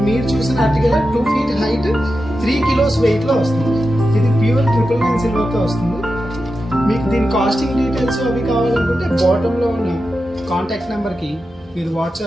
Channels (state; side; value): normal; both; correlation 0.90